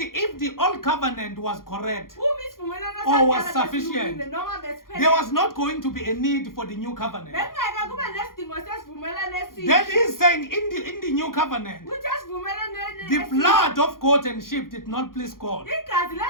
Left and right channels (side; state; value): right; late; 0.91 ms